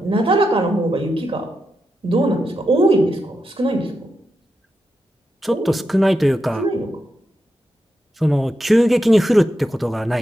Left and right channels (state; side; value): normal; both; correlation 0.86